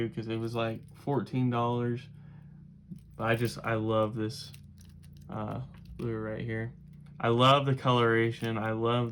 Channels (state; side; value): identical; both; correlation 1.00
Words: because it was like $14. But I love this lure right here. I love the coloration. I love